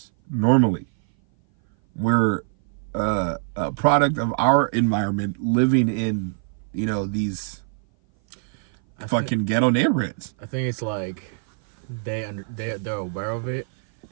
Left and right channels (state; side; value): silent; left; 57 dB below the other